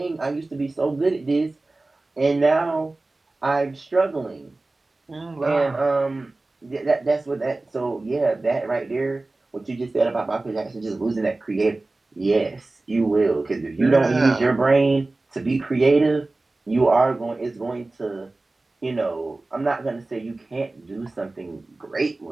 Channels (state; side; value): quieter; left; 3.1 dB